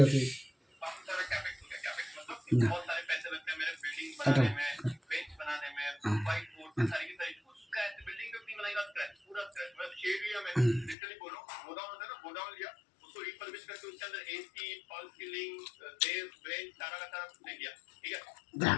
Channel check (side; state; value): right; drops out; at 11.0 s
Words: আছে। না এটা